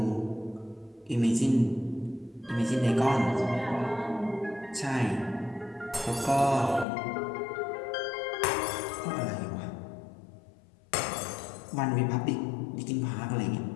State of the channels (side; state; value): right; drops out; at 6.9 s